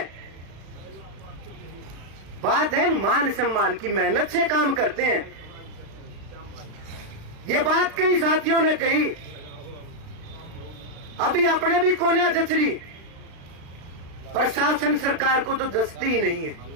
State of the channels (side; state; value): left; late; 36 ms